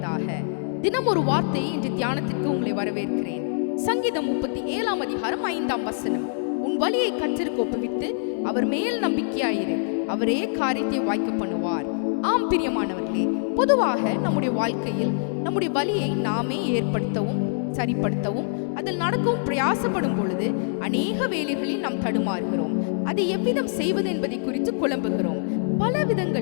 தினம் ஒரு வார்த்தை என்ற தியானத்திற்கு உங்களை வரவேற்கிறேன். சங்கீதம் 37 அதிகாரம் 5 வசனம். உன் வழியை கர்த்தருக்கு ஒப்புவித்து அவர் மேல் நம்பிக்கையாயிரு, அவரே காரியத்தை வாய்க்க பண்ணுவார். ஆம் பிரியமானவர்களே, பொதுவாக நம்முடைய வாழ்க்கையில் நம்முடைய வழியை நாமே ஏற்படுத்தவும் சரிப்படுத்தவும் அதில் நடக்கவும் பிரயாசப்படும் பொழுது அநேக வேலைகளில் நாம் தடுமாறுகிறோம். அதை எவ்விதம் செய்வது என்பதை குறித்து குழம்புகிறோம். பல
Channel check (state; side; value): silent; right; 62 dB below the other